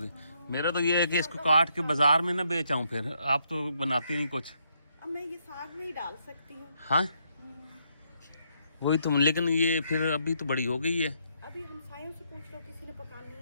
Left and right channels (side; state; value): both; inverted; correlation -0.75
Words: मेरा तो ये है कि इसको काट के बाजार में ना बेचाऊं, फिर आप तो बनाती नहीं कुछ। अब मैं ये साग में ही डाल सकती हूँ। हाँ वही तुम, लेकिन ये फिर अभी तो बड़ी हो गई है। अभी हमसायों से पूछ लो, किसी ने पकानी